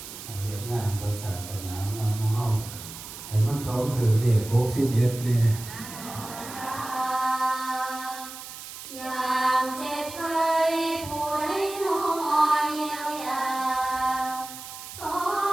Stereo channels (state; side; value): noise; right; hiss, 12 dB below the sound